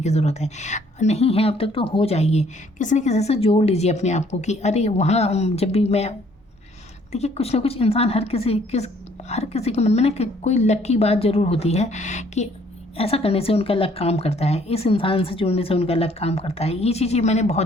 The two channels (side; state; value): both; normal; correlation 0.62